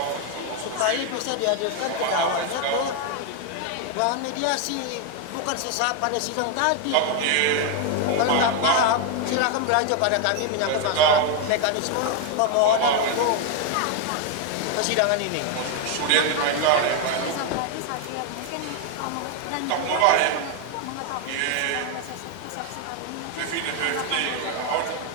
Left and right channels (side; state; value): both; different; correlation 0.01